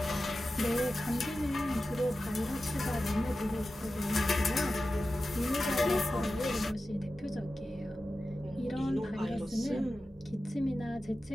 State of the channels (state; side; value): normal; both; correlation 0.93